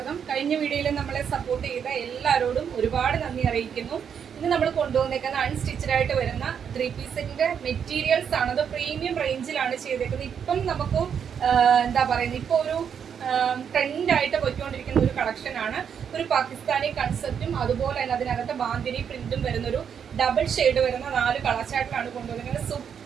കഴിഞ്ഞ വീഡിയോയിൽ നമ്മളെ സപ്പോർട്ട് ചെയ്ത എല്ലാവരോടും ഒരുപാട് നന്ദി അറിയിക്കുന്നു. ഇന്ന് നമ്മൾ കൊണ്ടുവന്നേക്കുന്ന അൺസ്റ്റിച്ചഡ് ആയിട്ട് വരുന്ന 3 പീസിന്റെ മെറ്റീരിയൽസ് ആണ്. അത് പ്രീമിയം റേഞ്ചിലാണ് ചെയ്തേക്കുന്നത്. ഇപ്പം നമുക്ക് എന്താ പറയുന്നത്, ഇപ്പോൾ ഒരു ട്രെൻഡായിട്ട് പോയിക്കൊണ്ടിരിക്കുന്ന ഒരു കളക്ഷൻ ആണ്. ഒരു പാകിസ്ഥാനി കൺസെപ്റ്റും അതുപോലെ തന്നെ അതിനകത്ത് ബാന്തിനി പ്രിന്റും വരുന്നൊരു ഡബിൾ ഷെയ്ഡ് വരുന്ന 4 കളർ ചാർട്ടിലാണ് കൊണ്ടുവന്നിരിക്കുന്നത്.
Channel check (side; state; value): left; quieter; 7.7 dB